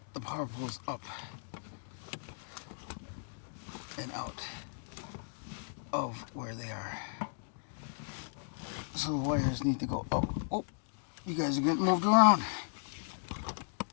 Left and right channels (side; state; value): right; silent; digital silence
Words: the power poles up and out of where they are. So the wires need to go up. Oh, you guys are getting moved around.